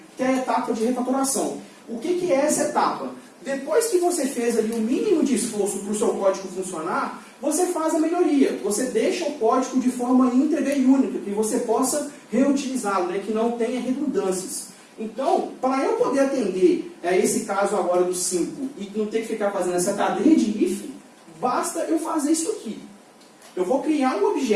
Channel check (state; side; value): identical; both; correlation 1.00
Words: que é a etapa de refatoração. O que é essa etapa? Depois que você fez ali o mínimo de esforço para o seu código funcionar, você faz a melhoria. Você deixa o código de forma íntegra e única, que você possa reutilizá-lo, né? Que não tenha redundâncias. Então, para eu poder atender esse caso agora do 5 e não ter que ficar fazendo essa cadeia de if, basta eu fazer isso aqui. Eu vou criar um